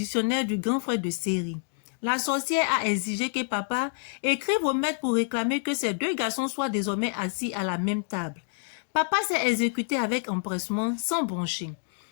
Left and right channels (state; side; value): silent; right; 60 dB below the other